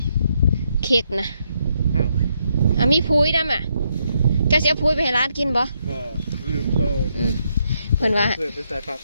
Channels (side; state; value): both; inverted; correlation -0.77